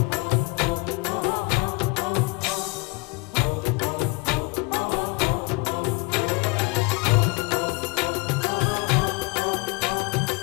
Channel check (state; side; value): quieter; right; 27.8 dB